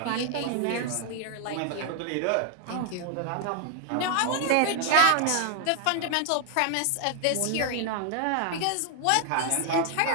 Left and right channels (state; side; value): different; both; correlation 0.00